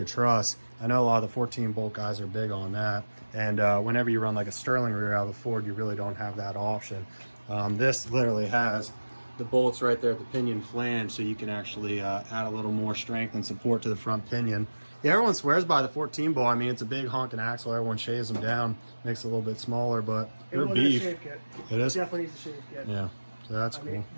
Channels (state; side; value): inverted; both; correlation -1.00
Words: truss. I know a lot of the 14 bolt guys are big on that. And whenever you run like a Sterling rear out of a Ford, you really don't have that option. This literally has the bolts right there at the pinion flange, so you can actually add a little more strength and support to the front pinion. Yeah, everyone swears by the 14 bolt. I mean, it's a big honking axle. Everyone shaves them down, makes it a little bit smaller, but they're beef. Shave kit. It is? Definitely needs a shave kit. Yeah, so that's cool. Mean,